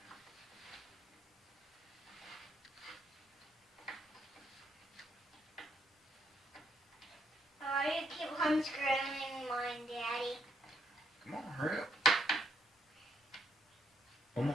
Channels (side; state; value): both; normal; correlation 0.73